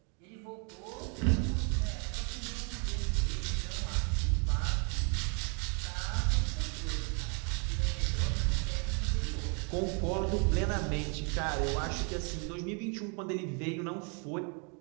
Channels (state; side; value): quieter; left; 36.5 dB